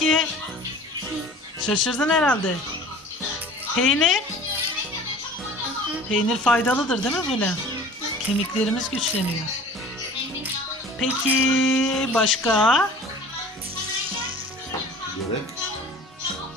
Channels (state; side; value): normal; both; correlation 0.44